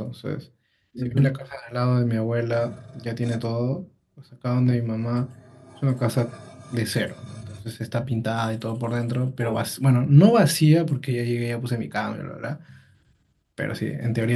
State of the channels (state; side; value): identical; both; correlation 1.00